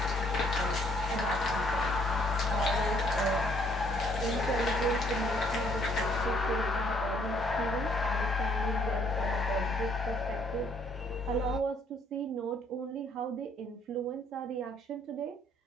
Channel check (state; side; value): normal; both; correlation 0.65